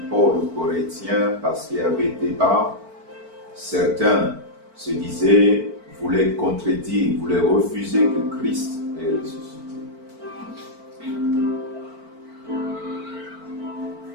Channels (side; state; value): left; late; 4.5 ms